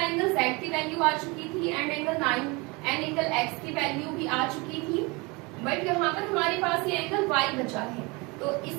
Z की वैल्यू आ चुकी थी and angle 9 and angle X की वैल्यू भी आ चुकी थी, बट यहाँ पर हमारे पास ये एंगल Y बचा है। तो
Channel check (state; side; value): quieter; left; 26.6 dB